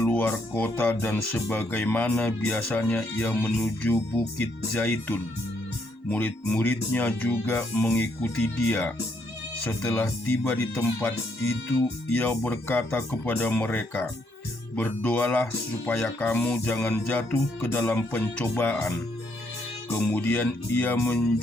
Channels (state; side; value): late; right; 1.1 ms